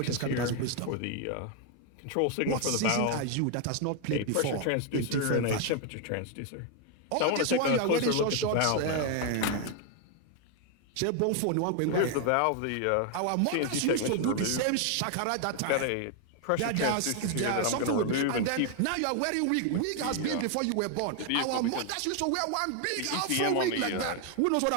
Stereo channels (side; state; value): both; different; correlation 0.00